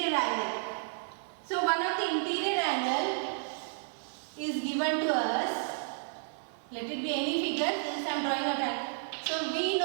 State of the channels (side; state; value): left; silent; digital silence